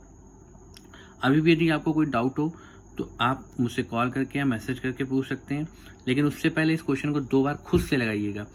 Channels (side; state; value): both; identical; correlation 1.00